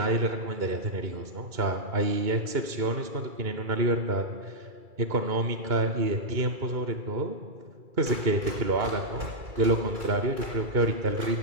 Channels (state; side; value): late; left; 2.3 ms